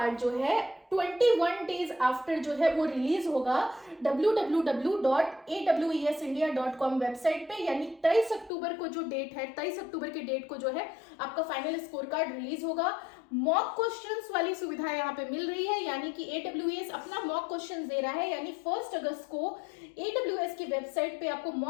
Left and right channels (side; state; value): right; drops out; at 8.5 s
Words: जो है 21 डेज आफ्टर जो है वो रिलीज होगा www.awesindia.com वेबसाइट पे, यानी 23 अक्टूबर को जो डेट है, 23 अक्टूबर के डेट को जो है आपका फाइनल स्कोर कार्ड रिलीज होगा। मॉक क्वेश्चंस वाली सुविधा यहाँ पे मिल रही है, यानी कि AWS अपना मॉक क्वेश्चंस दे रहा है, यानी 1 अगस्त को AWS की वेबसाइट पे आपको